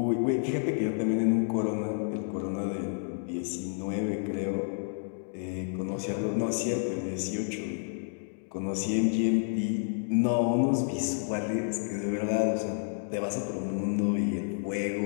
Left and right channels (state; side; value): silent; right; digital silence